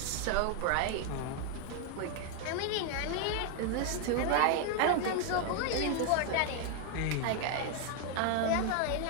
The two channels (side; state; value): both; different; correlation 0.00